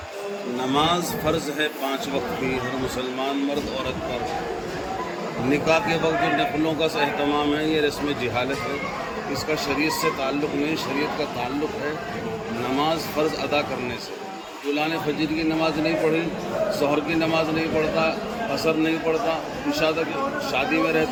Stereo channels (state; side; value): identical; both; correlation 1.00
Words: نماز فرض ہے 5 وقت کی ہر مسلمان مرد عورت پر۔ نکاح کے وقت جو نفلوں کا اہتمام ہے، یہ رسم جہالت ہے، اس کا شریعت سے تعلق نہیں، شریعت کا تعلق ہے نماز فرض ادا کرنے سے۔ دلہا نے فجر کی نماز نہیں پڑھی، ظہر کی نماز نہیں پڑھتا، عصر نہیں پڑھتا، عشاء تک شادی میں